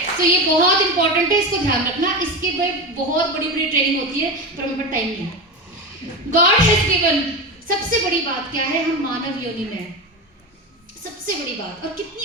तो ये बहुत इंपॉर्टेंट है, इसको ध्यान रखना। इसके भाई बहुत बड़ी बड़ी ट्रेनिंग होती है, पर हमें टाइम नहीं है। गॉड हैज गिवन, सबसे बड़ी बात क्या है, हम मानव योनि में हैं, सबसे बड़ी बात। और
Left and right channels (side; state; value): both; normal; correlation 0.21